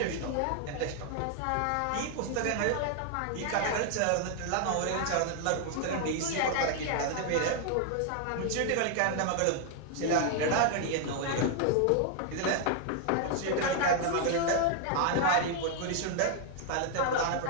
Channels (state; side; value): different; both; correlation 0.00